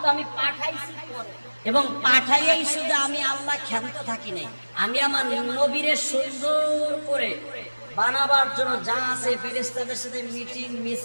আমি পাঠাইছি এবং পাঠাইয়াই শুধু আমি আল্লাহ ক্ষান্ত থাকি নাই, আমি আমার নবীরে সুন্দর করে বানাবার জন্য যা আছে ফেরেশতাদের সাথে মিটিং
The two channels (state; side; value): inverted; both; correlation -1.00